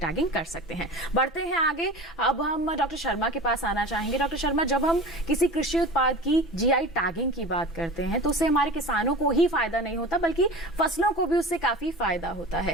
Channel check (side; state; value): both; normal; correlation 0.34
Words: कर सकते हैं। बढ़ते हैं आगे। अब हम डॉक्टर शर्मा के पास आना चाहेंगे। डॉक्टर शर्मा, जब हम किसी कृषि उत्पाद की जीआई टैगिंग की बात करते हैं तो उससे हमारे किसानों को ही फायदा नहीं होता बल्कि फसलों को भी उससे काफी फायदा होता